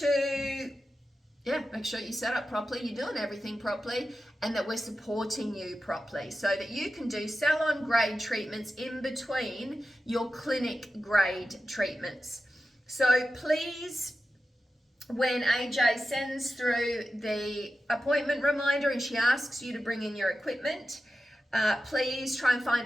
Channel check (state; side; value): normal; both; correlation 0.92